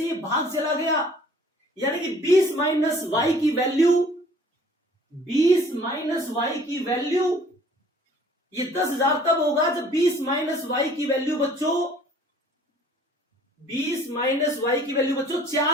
भाग चला गया। यानी कि 20 माइनस वाई की वैल्यू, 20 माइनस वाई की वैल्यू ये 10,000 तब होगा जब 20 माइनस वाई की वैल्यू बच्चों, 20 माइनस वाई की वैल्यू बच्चों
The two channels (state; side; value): normal; both; correlation 0.54